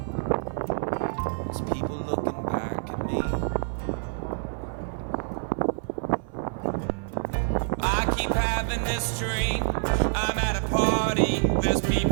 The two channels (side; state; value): left; silent; 60 dB below the other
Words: There's people looking back at me. I keep having this dream. I'm at a party. There's